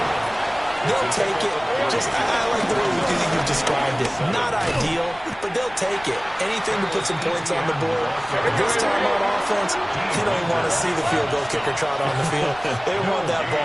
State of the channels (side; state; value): left; noise; rumble, 22 dB below the sound